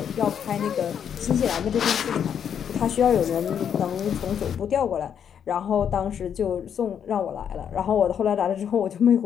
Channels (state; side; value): quieter; right; 8.3 dB